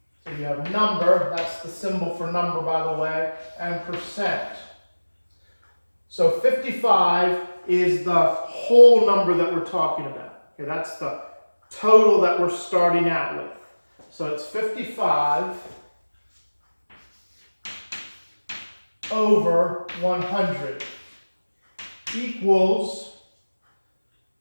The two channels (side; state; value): both; inverted; correlation -1.00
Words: So you have number, that's the symbol for number, by the way, and percent. So 55 is the whole number that we're talking about. Okay, that's the total that we're starting out with. So it's 55 over 100 equals